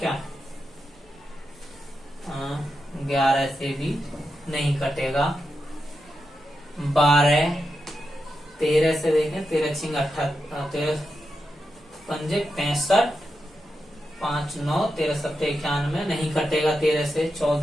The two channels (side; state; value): both; normal; correlation 0.88